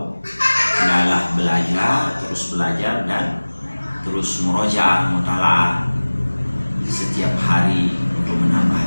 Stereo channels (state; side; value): inverted; both; correlation -1.00